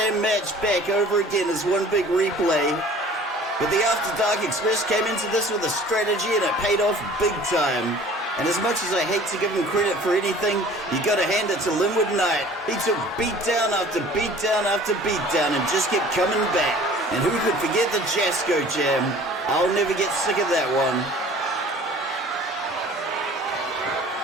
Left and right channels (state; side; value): normal; both; correlation 0.48